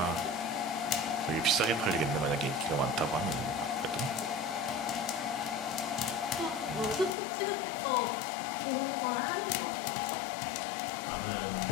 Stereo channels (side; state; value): right; drops out; at 7.2 s